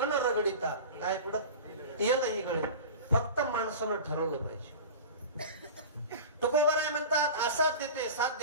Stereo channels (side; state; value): both; inverted; correlation -0.33